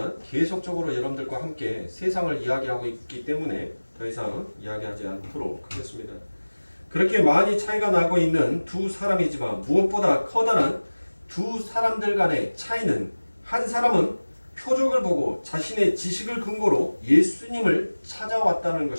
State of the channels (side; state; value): both; inverted; correlation -1.00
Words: 계속적으로 여러분들과 함께 세상을 이야기하고 있기 때문에 더 이상 이야기하지 않도록 하겠습니다. 그렇게 많이 차이가 나고 있는 두 사람이지만 무엇보다 커다란 두 사람들 간의 차이는 한 사람은 표적을 보고 자신의 지식을 근거로 예수님을 찾아왔다는